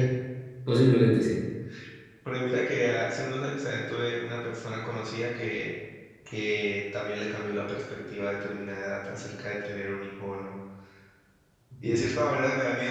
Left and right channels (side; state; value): both; identical; correlation 1.00